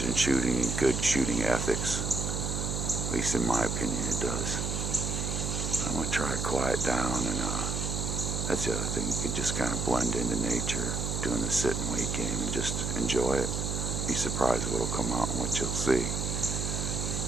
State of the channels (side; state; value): right; noise; hum, 1 dB below the sound